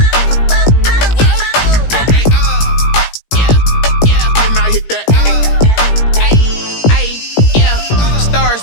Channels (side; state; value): right; late; 17 ms